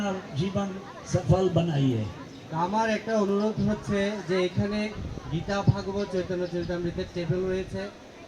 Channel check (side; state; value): both; identical; correlation 1.00